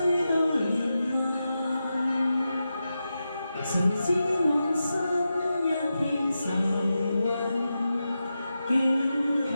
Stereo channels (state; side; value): inverted; both; correlation -0.90